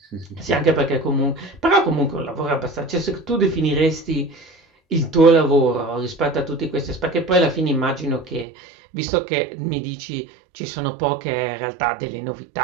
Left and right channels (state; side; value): drops out; left; at 8.5 s